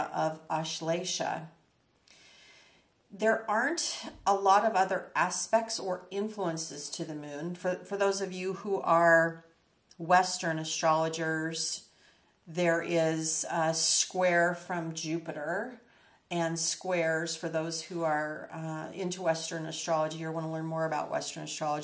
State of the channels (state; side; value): identical; both; correlation 1.00